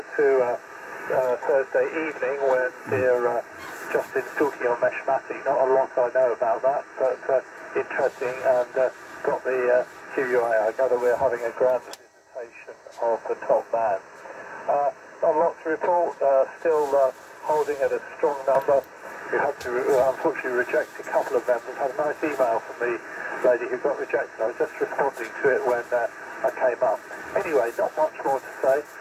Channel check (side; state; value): both; identical; correlation 1.00